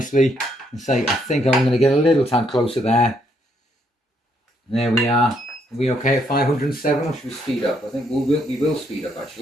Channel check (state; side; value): normal; both; correlation 0.72